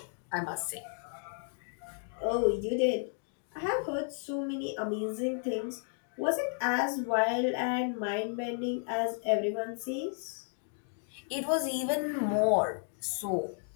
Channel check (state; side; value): silent; right; 56 dB below the other